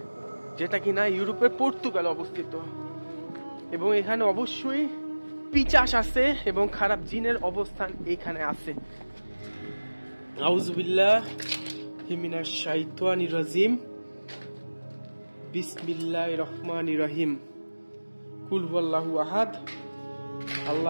যেটা কিনা ইউরোপের পর্তুগাল অবস্থিত। এবং এখানে অবশ্যই পিচাস আছে এবং খারাপ জিনের অবস্থান এখানে আছে। আউযু বিল্লাহি মিনাশ শাইতানির রাজিম, বিসমিল্লাহির রহমানির রহিম। কুল হুয়াল্লাহু আহাদ,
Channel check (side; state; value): both; inverted; correlation -1.00